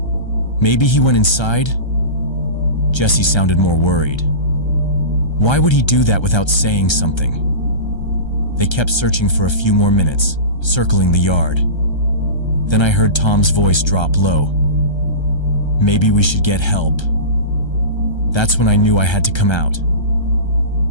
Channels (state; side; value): late; right; 1.3 ms